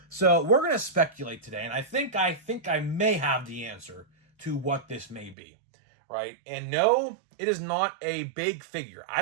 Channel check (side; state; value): left; drops out; at 5.4 s